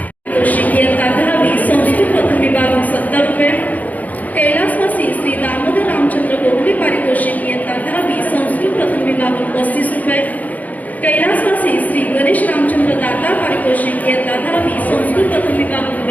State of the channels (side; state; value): right; late; 0.078 ms